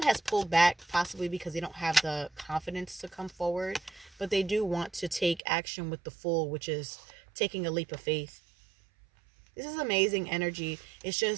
has pulled back, possibly because they don't have the confidence to come forward, but they do want to take action with the Fool, which is taking a leap of faith. This is amazing energy. It's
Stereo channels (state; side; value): drops out; left; at 5.4 s